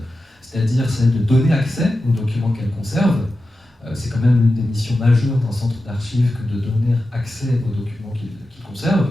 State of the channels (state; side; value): normal; both; correlation 0.92